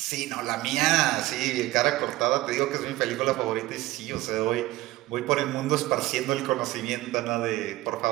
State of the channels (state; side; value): quieter; left; 17.5 dB